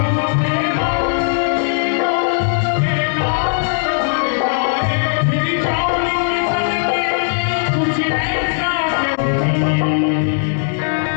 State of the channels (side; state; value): right; silent; digital silence